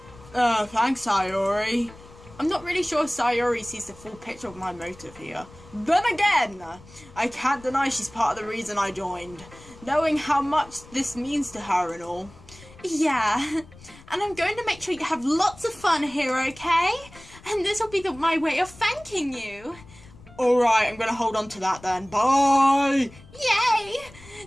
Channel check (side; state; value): left; noise; rumble, 21 dB below the sound